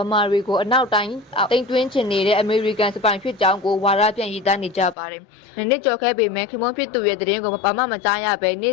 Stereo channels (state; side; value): drops out; right; at 5.0 s